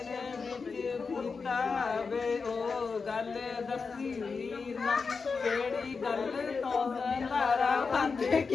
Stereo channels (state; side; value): quieter; right; 4.9 dB